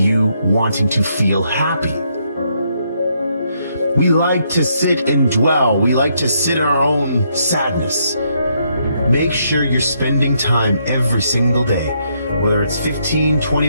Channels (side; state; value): both; inverted; correlation -0.75